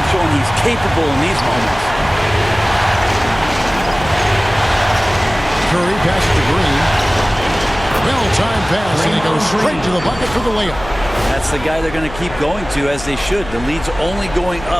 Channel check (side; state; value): left; noise; hum, 13 dB below the sound